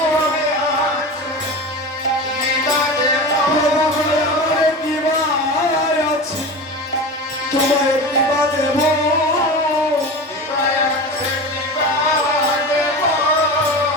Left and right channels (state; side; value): normal; both; correlation 0.28